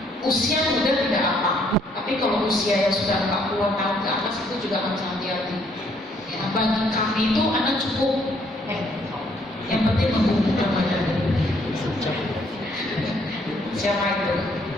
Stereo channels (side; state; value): both; normal; correlation 0.67